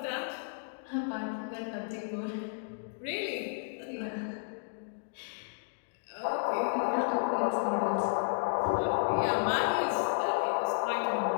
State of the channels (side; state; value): right; silent; digital silence